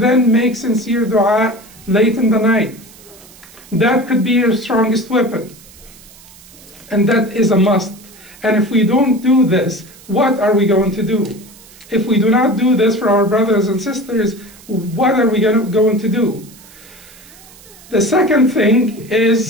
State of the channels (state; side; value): noise; right; hiss, 23 dB below the sound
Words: make sincere dua late in the night. That could be your strongest weapon. And that is a must. And if we don't do this, what are we going to do? If we do not do this for our brothers and sisters, what are we going to do? The second thing